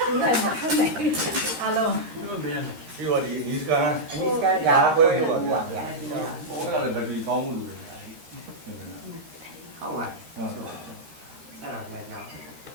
Đúng rồi mà không này. Alo. Đi vào đi Niska. Niska dạ quên rồi. Bố là bởi vì có một đủ không à? Sao là nhỏ?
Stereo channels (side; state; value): left; late; 13 ms